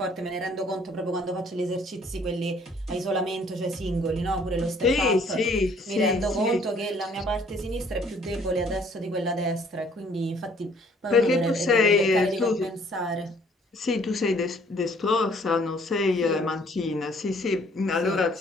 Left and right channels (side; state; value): both; normal; correlation 0.60